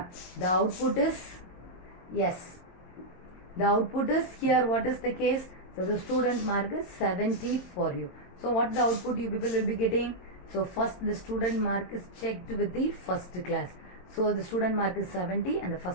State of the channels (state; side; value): late; right; 22 ms